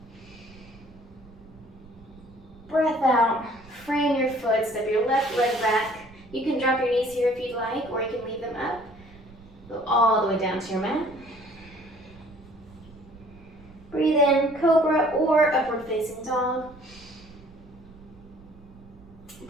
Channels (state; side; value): noise; right; rumble, 22 dB below the sound